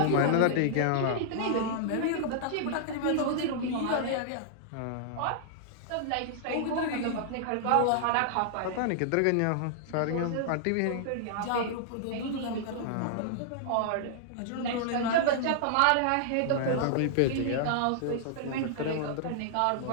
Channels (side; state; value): both; different; correlation -0.01